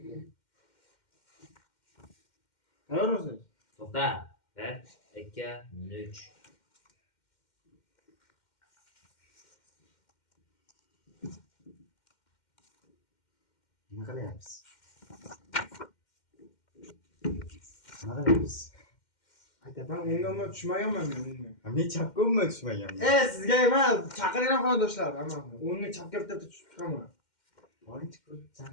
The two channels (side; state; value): right; late; 2.1 ms